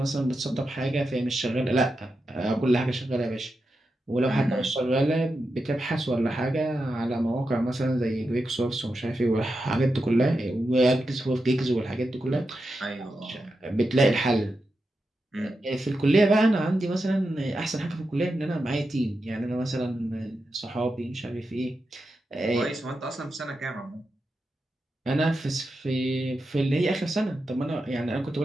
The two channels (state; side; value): normal; both; correlation 0.88